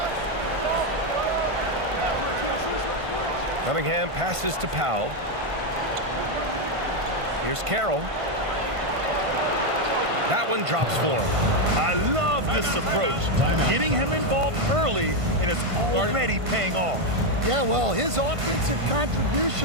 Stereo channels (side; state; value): left; late; 1.5 ms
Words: Cunningham passes to Powell. Here's Carroll. That one drops for him. I love this approach. Getting him involved early, and it's already paying off. Yeah, well, his offensive